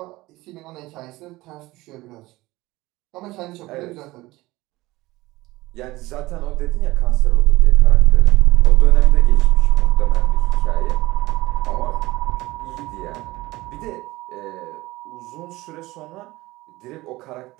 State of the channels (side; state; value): left; quieter; 19.5 dB